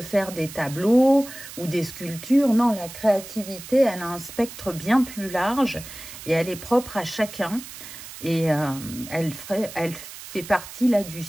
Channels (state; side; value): noise; right; hiss, 14 dB below the sound